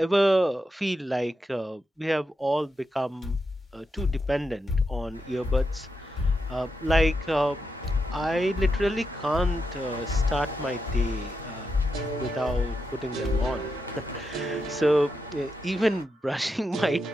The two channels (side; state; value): both; normal; correlation 0.86